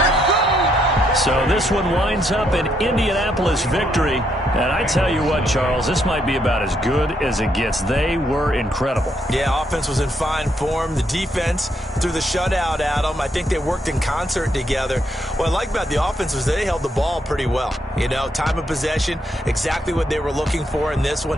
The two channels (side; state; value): both; normal; correlation 0.75